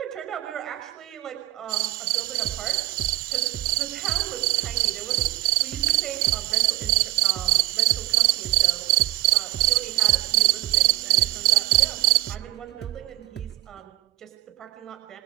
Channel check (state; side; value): quieter; left; 16.9 dB